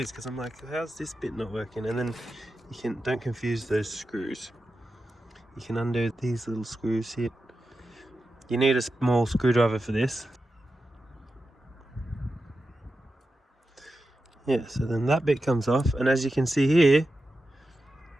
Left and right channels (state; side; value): normal; both; correlation 0.91